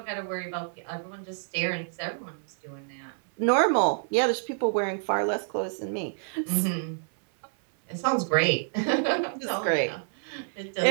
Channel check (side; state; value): left; silent; 59 dB below the other